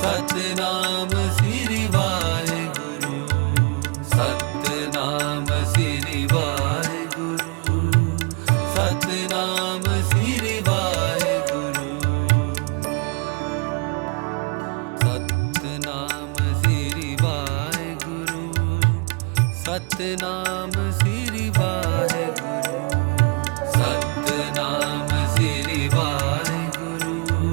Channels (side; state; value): left; quieter; 32.6 dB